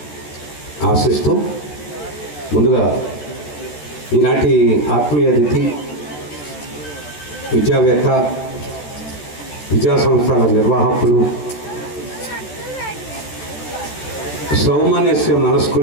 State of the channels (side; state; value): right; late; 14 ms